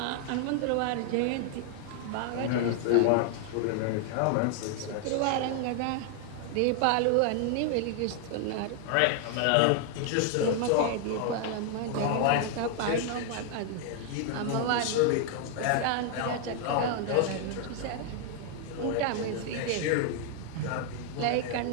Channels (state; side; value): different; both; correlation 0.00